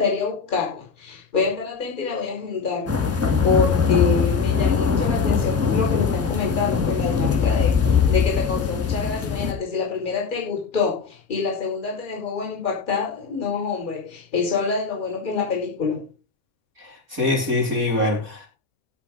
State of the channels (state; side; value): quieter; right; 5.1 dB